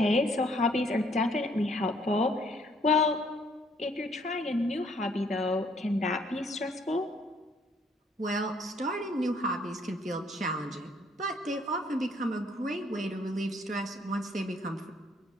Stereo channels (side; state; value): both; normal; correlation 0.65